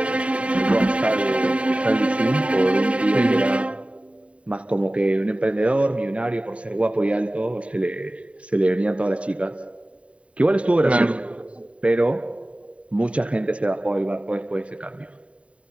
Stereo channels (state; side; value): late; left; 0.063 ms